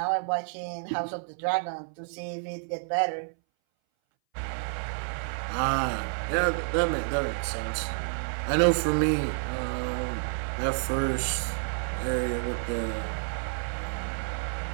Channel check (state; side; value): silent; left; 58 dB below the other